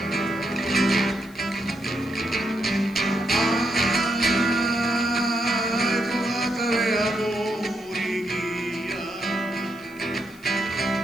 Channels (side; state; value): left; noise; hiss, 25 dB below the sound